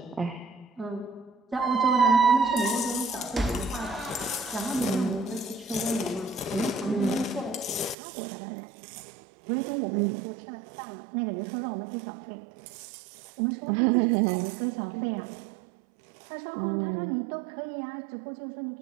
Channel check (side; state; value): left; drops out; at 8.0 s